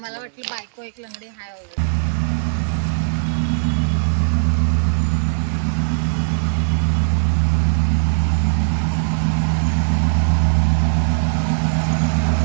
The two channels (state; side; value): silent; left; digital silence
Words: वाटलं बायको एक लंगडी हाय वगैरे.